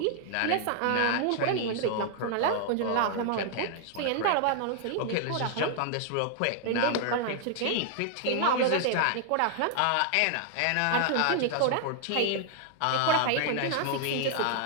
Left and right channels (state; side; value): different; both; correlation 0.00